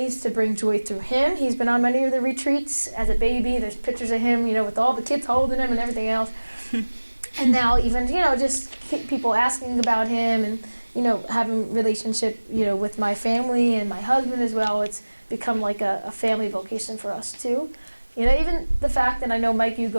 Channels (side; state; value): both; inverted; correlation -1.00